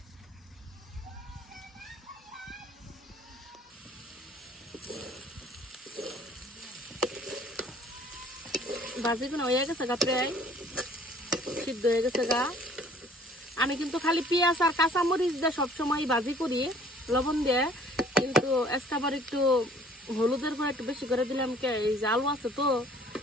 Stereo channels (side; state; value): both; normal; correlation 0.55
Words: ভাজিগুলো হয়ে গেছে গা, প্রায় সিদ্ধ হয়ে গেছে গা। আমি কিন্তু খালি পেঁয়াজ আর কাঁচামরিচ দিয়ে সবসময় ভাজি করি লবণ দিয়ে, কিন্তু আজকাবার একটু হলুদের গুঁড়া একটু বেশি করে দিলাম। এই যে আলু আছে তো